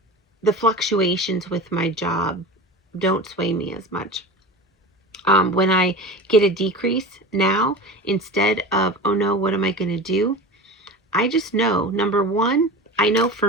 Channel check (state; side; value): normal; both; correlation 0.32